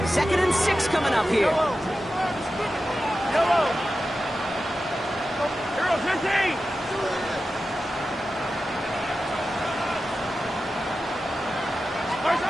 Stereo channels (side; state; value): both; normal; correlation 0.92